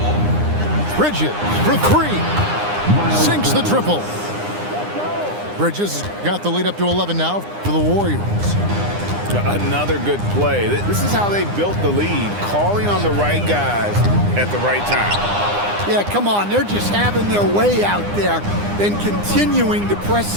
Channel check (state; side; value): late; left; 9.8 ms